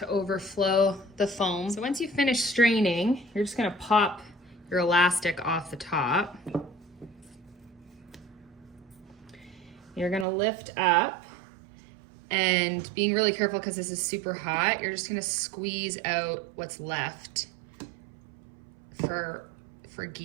overflow the foam. So once you finish straining, you're just gonna pop your elastic off the top. You're gonna lift up, and being really careful because this is super hot, you're just gonna squeeze out what's left for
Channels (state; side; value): drops out; left; at 10.2 s